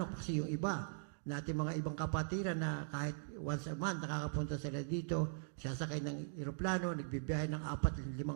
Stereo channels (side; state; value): left; silent; digital silence